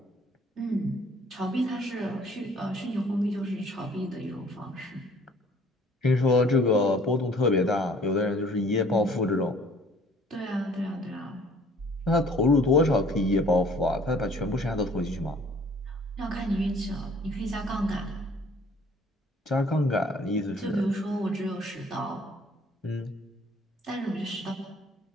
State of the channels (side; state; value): both; normal; correlation 0.55